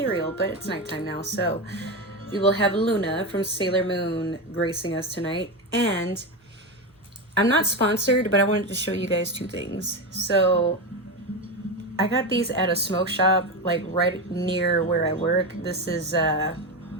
But it's nighttime now, so... we will have Luna from Sailor Moon gracing us tonight. And I'm not sponsored, but I wanted to show you guys two things. So I got these at a smoke shop, like right near where I work. This is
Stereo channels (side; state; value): both; normal; correlation 0.16